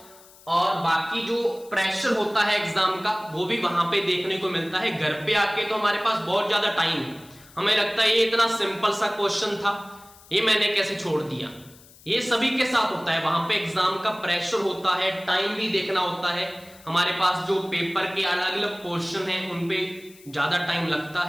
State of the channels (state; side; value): noise; left; hiss, 24 dB below the sound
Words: और बाकी जो प्रेशर होता है एग्जाम का वो भी वहां पे देखने को मिलता है। घर पे आके तो हमारे पास बहुत ज्यादा टाइम है, हमें लगता है ये इतना सिंपल सा क्वेश्चन था, ये मैंने कैसे छोड़ दिया, ये सभी के साथ होता है, वहां पे एग्जाम का प्रेशर होता है, टाइम भी देखना होता है, हमारे पास जो पेपर के अलग अलग पोर्शन है उन पे ज्यादा टाइम लगता